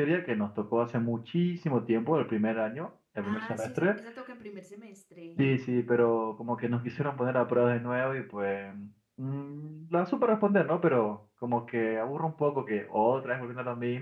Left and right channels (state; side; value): identical; both; correlation 1.00